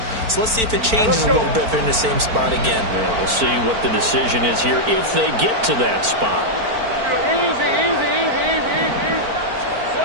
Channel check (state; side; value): late; left; 4.4 ms